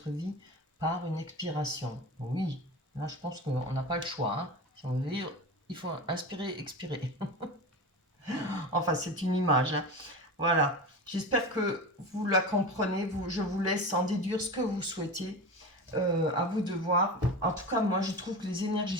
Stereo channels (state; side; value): normal; both; correlation 0.28